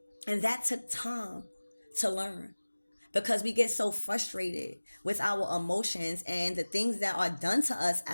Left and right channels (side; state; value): both; inverted; correlation -1.00